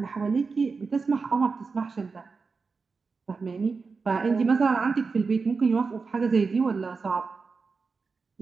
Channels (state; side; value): quieter; left; 4.6 dB